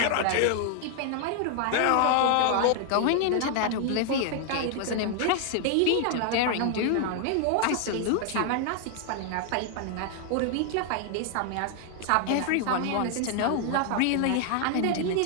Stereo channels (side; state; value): both; different; correlation 0.00